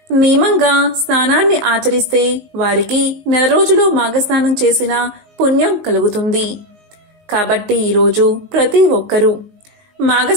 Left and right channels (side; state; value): left; late; 19 ms